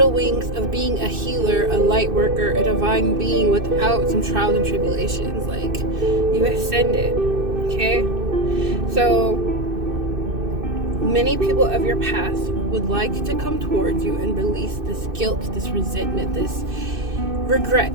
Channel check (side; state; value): left; late; 2.6 ms